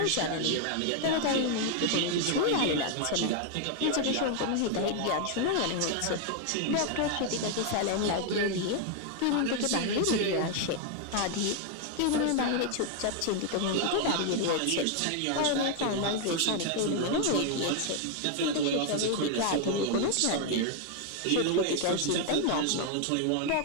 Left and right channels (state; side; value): different; both; correlation 0.00